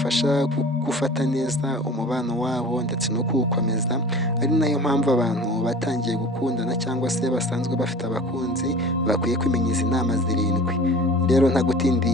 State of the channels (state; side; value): normal; both; correlation 0.40